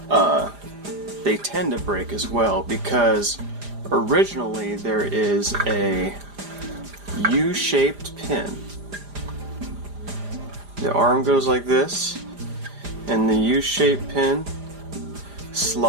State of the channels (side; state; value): left; late; 4.9 ms